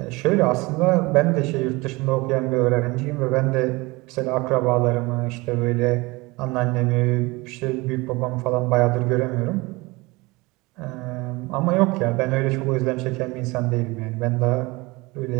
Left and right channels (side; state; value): left; quieter; 23.3 dB